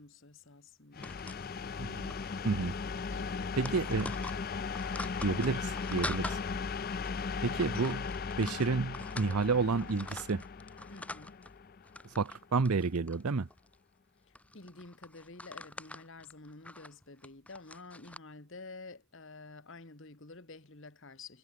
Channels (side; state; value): both; normal; correlation 0.33